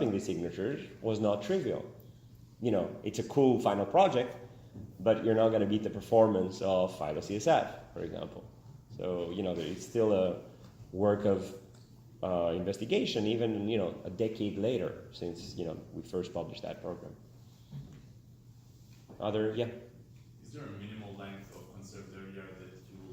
these signatures was not trivial. It's a cool final project, but you're not going to beat the performance of Phylo-CSF, for example. So, it's still a work of investigation, even, a decade later since, we first published that program. Yeah? Is there a minimal length of conserved area that you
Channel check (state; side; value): identical; both; correlation 1.00